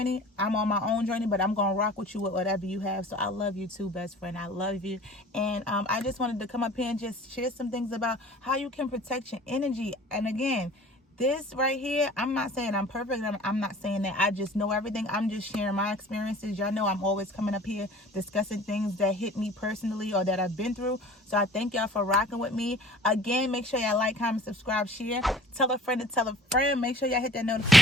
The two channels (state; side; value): normal; both; correlation 0.46